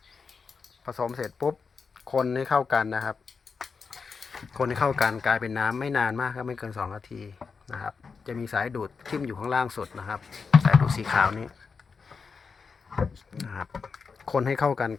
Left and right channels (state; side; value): quieter; right; 5.2 dB